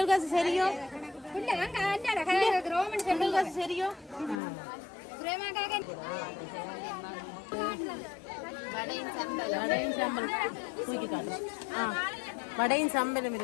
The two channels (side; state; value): right; drops out; at 4.4 s